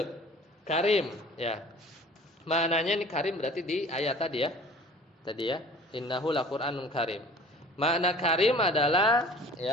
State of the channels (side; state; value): both; normal; correlation 0.46